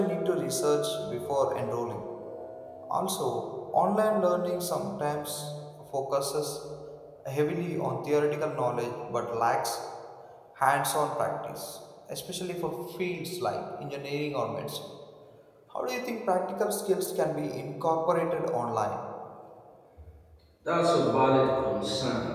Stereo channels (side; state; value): both; identical; correlation 1.00